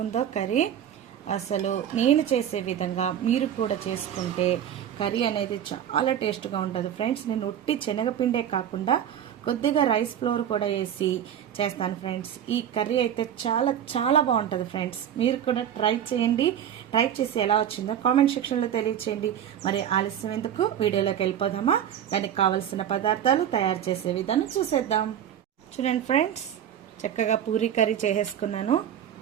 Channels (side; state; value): left; quieter; 9.8 dB